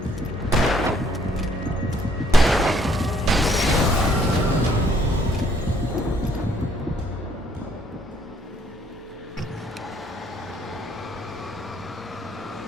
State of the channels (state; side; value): normal; both; correlation 0.65